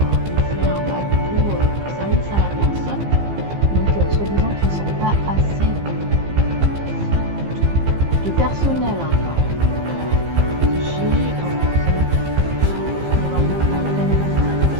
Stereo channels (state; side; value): late; left; 15 ms